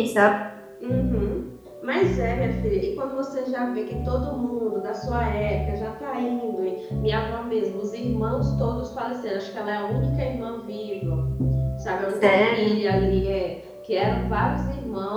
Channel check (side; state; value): both; identical; correlation 1.00